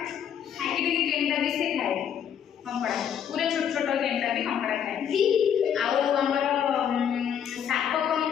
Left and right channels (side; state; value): right; quieter; 8.7 dB